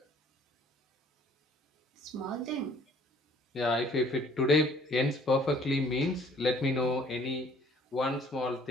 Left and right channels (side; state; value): both; normal; correlation 0.57